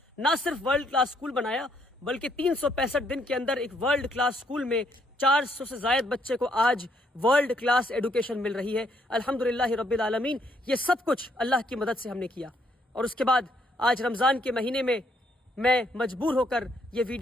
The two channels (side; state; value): both; normal; correlation 0.71